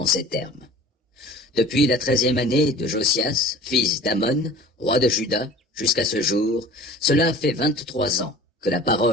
ces termes. Depuis la 13e année de Josias, fils d'Amon, roi de Juda, jusqu'à ce jour, cela fait 23 ans que la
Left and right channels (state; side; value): normal; both; correlation 0.43